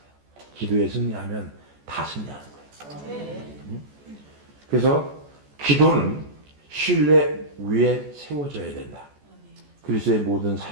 기도에 승리하면 다 승리하는 거예요. 그래서 기도는 신뢰 위에 세워져야 된다. 그리스도의 모든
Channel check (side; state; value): left; late; 14 ms